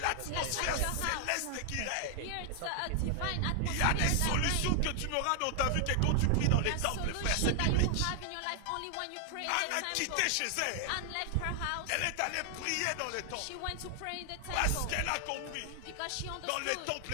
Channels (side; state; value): both; different; correlation 0.00